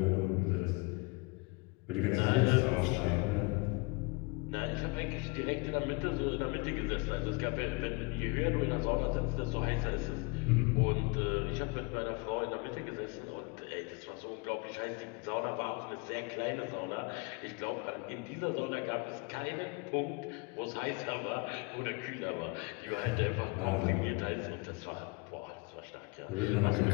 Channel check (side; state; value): right; quieter; 29.0 dB